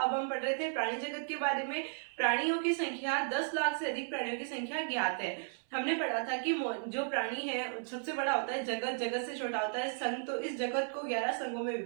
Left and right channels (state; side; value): silent; left; 55 dB below the other